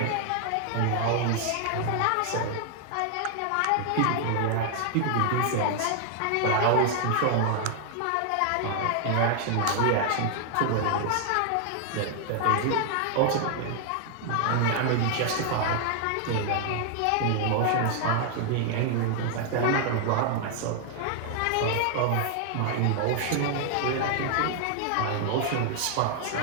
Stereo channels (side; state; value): both; different; correlation 0.00